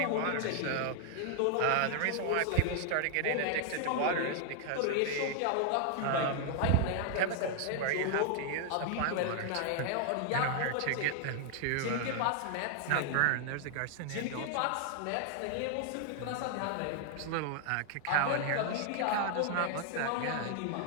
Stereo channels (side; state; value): both; different; correlation 0.00